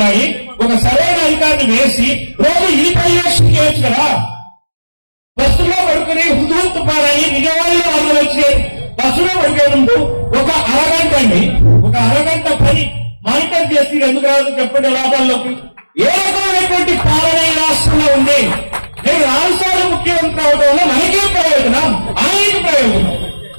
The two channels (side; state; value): both; inverted; correlation -1.00